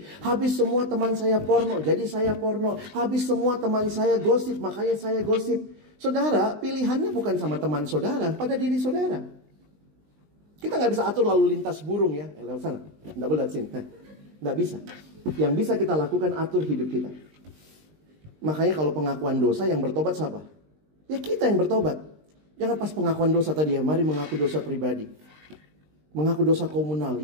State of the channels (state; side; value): late; left; 20 ms